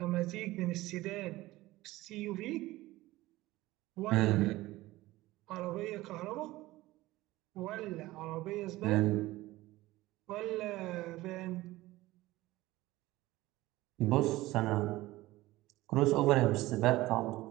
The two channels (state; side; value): quieter; left; 18.0 dB